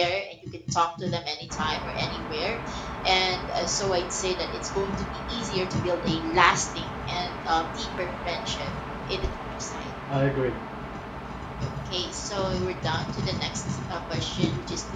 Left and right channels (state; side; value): identical; both; correlation 1.00